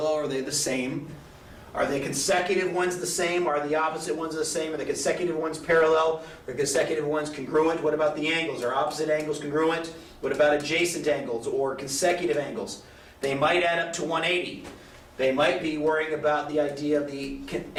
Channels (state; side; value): identical; both; correlation 1.00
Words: or are they the same? Are the consecutive ones the same? Are the opposite ones the same? Are the consecutive ones parallel? Are the consecutive ones congruent? What about the angles? Are opposite angles congruent? What about adjacent angles or consecutive angles? They might add up to 180. They might be worrying about the idea of the